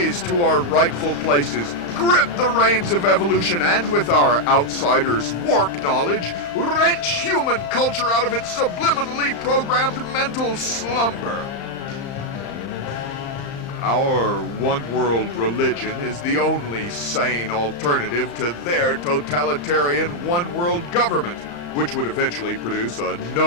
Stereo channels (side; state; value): right; late; 35 ms